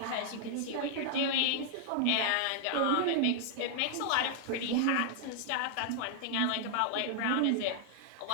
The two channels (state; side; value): different; both; correlation -0.01